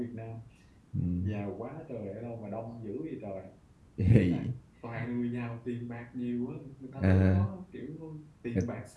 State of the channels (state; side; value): identical; both; correlation 1.00